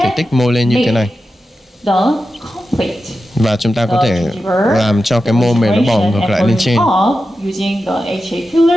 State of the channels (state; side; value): normal; both; correlation 0.91